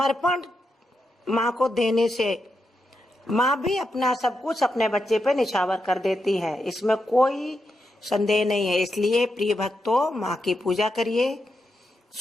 माँ को देने से माँ भी अपना सब कुछ अपने बच्चे पे निछावर कर देती है, इसमें कोई संदेह नहीं है। इसलिए प्रिय भक्तों, माँ की पूजा करिए,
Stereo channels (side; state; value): both; normal; correlation 0.85